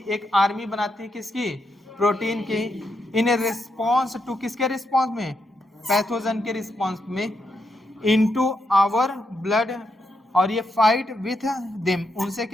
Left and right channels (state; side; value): normal; both; correlation 0.82